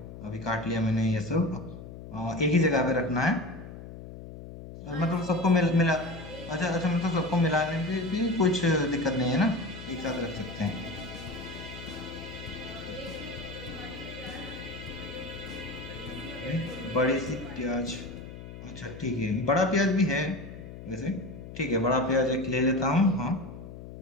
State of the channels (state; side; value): noise; left; hum, 13 dB below the sound